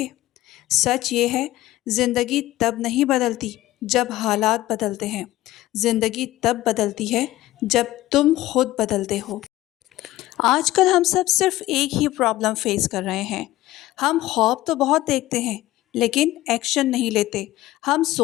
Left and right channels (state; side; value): quieter; right; 16.2 dB